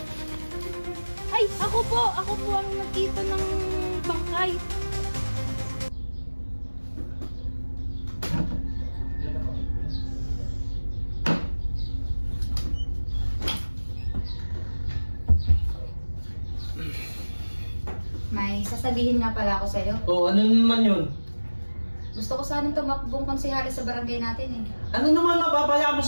Ay, ako po ang nagkita ng bangkay. May sasabihin nga pala ako sa'yo. Oh, ano naman yun? Gusto ko sanang tumakbong konsehali sa barangay natin eh. Ano naman mapapaya mo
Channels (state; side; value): inverted; both; correlation -1.00